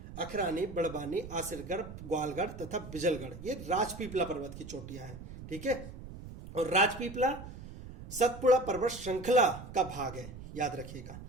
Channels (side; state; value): right; noise; rumble, 13 dB below the sound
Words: अखरानी, बड़वानी, आसिरगढ़, ग्वालगढ़ तथा बिजलगढ़, ये राजपीपला पर्वत की चोटियां हैं, ठीक है। और राजपीपला सतपुड़ा पर्वत श्रृंखला का भाग है, याद रखिएगा।